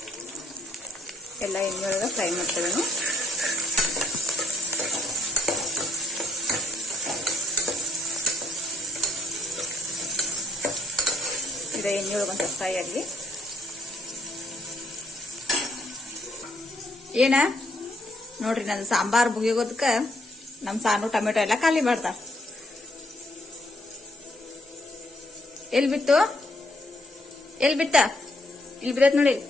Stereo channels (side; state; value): both; normal; correlation 0.71